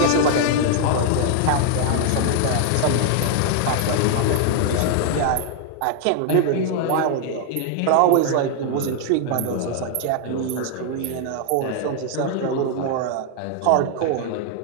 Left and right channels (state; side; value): different; both; correlation 0.00